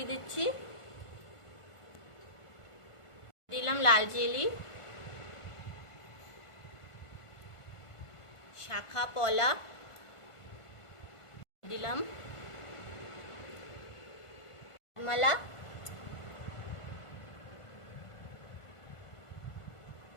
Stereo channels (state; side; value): late; right; 1.5 ms